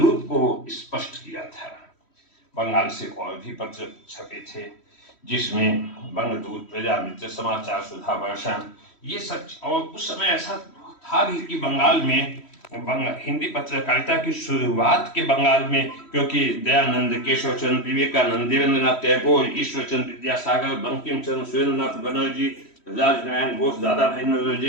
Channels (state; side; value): late; right; 3.1 ms